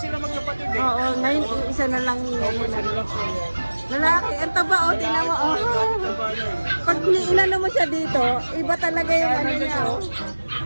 magkapatid eh. Oo, ngayon isa na lang Opo, ngayon. isa na lang po yan. Lalaki, ang taba, oh, tingnan mo, oh. Pag inano mo siya dito, iba talaga yung ano niya, oh.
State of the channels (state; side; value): inverted; both; correlation -1.00